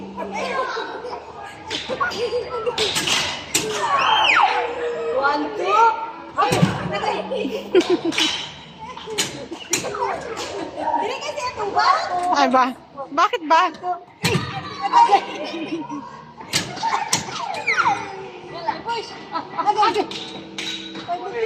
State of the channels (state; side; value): identical; both; correlation 1.00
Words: One, two! Agay! Agay! Dili kasi ito ba? Ay ba? Bakit ba? Agay! Push! Agay! Agay!